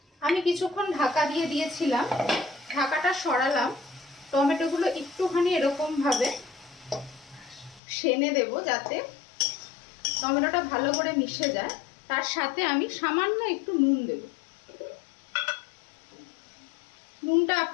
আমি কিছুক্ষণ ঢাকা দিয়ে দিয়েছিলাম, ঢাকাটা সরালাম। টমেটোগুলো একটুখানি এরকম ভাবে সেনে দেব যাতে টমেটোটা ভালো করে মিশে যায়। তার সাথে আমি সামান্য একটু নুন দেব। নুনটা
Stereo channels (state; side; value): drops out; right; at 7.8 s